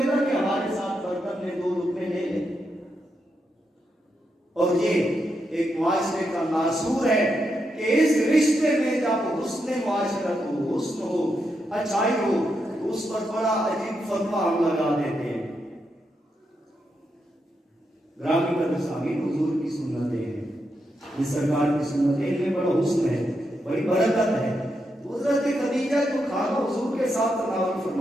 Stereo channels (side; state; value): both; normal; correlation 0.83